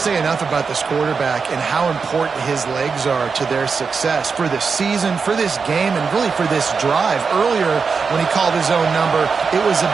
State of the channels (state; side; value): quieter; left; 5.3 dB